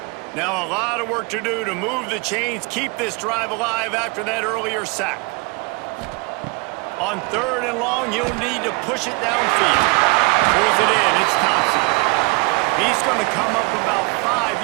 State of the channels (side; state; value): left; quieter; 29.0 dB